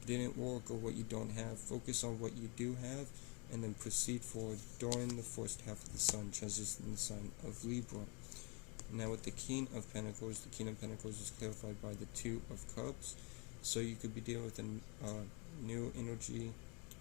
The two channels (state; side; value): quieter; right; 32.2 dB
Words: didn't work or what you don't have, focus on what you do have, and then proceed forward during the first half of the sun transition in the sign of Libra. Now with the King of Pentacles is clarified by the Two of Cups. So you could be dealing with a new energy